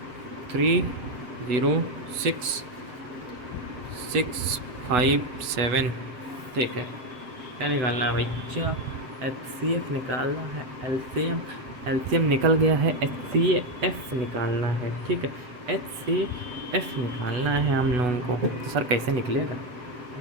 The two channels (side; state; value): left; late; 8.1 ms